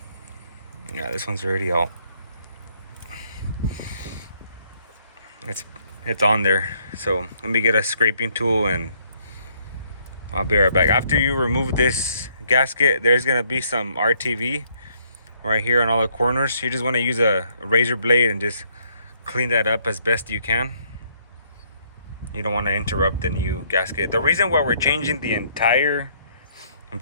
Yeah, this one's already out. It's on there. So let me get a scraping tool and I'll be right back. After you remove this gasket, there's gonna be some RTV right here on all the corners. You just want to use a razor blade and just clean that up as best you can. You don't want to interrupt the new gasket. The reason why we're changing the entire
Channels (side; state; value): both; inverted; correlation -0.69